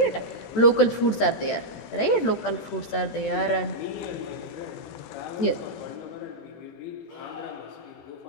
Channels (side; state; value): right; late; 14 ms